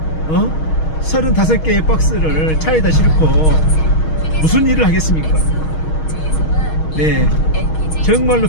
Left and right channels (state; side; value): late; right; 6.4 ms